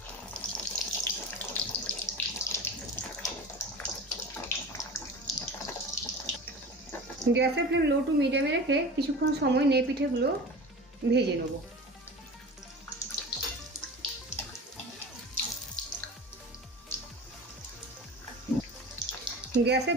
গ্যাসের ফ্লেম লো টু মিডিয়ামে রেখে কিছুক্ষণ সময় নিয়ে পিঠেগুলো ভেজে নেব। গ্যাসের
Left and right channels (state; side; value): normal; both; correlation 0.35